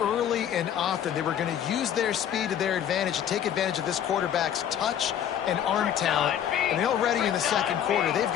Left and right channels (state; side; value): quieter; right; 9.7 dB